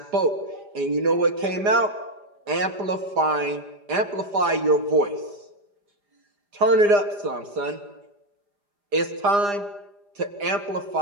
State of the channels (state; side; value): late; left; 4.9 ms